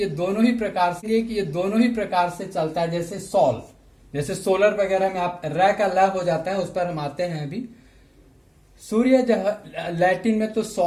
दोनों ही प्रकार से चलता है। जैसे सॉल, जैसे सोलर वगैरह में आप र का ल हो जाता है, उस पर हम आते हैं अभी। सूर्य लैटिन में तो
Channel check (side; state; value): both; identical; correlation 1.00